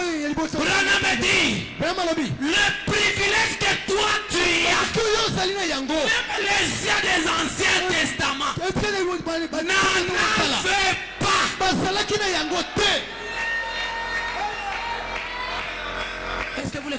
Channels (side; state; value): both; identical; correlation 1.00